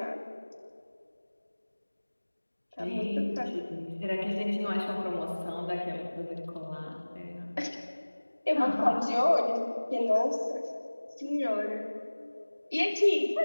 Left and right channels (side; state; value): both; inverted; correlation -1.00